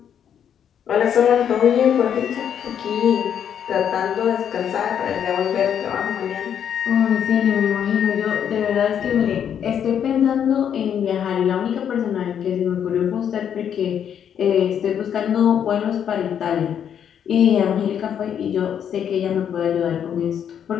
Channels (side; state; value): right; quieter; 8.7 dB